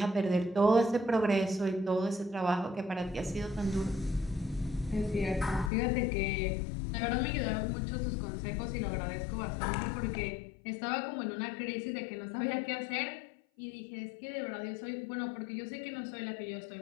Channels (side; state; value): right; drops out; at 5.7 s